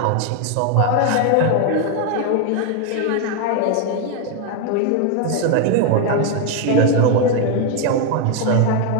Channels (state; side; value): different; both; correlation 0.01